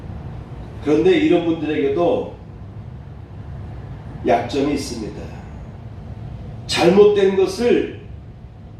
그런데 이런 분들에게도 약점이 있습니다. 잘못된 것을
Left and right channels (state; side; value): identical; both; correlation 1.00